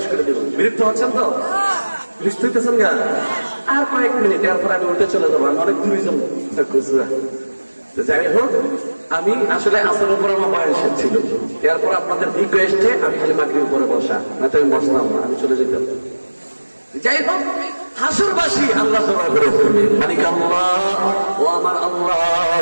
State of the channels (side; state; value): both; inverted; correlation -1.00